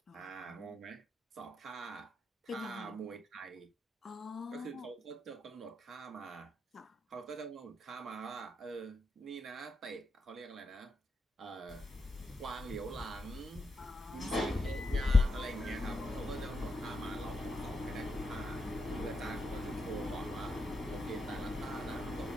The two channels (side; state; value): both; normal; correlation 0.84